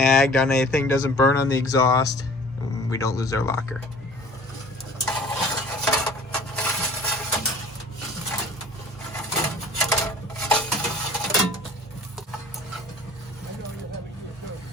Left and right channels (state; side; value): normal; both; correlation 0.47